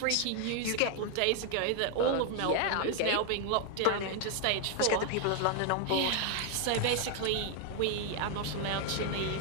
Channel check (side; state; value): both; different; correlation 0.00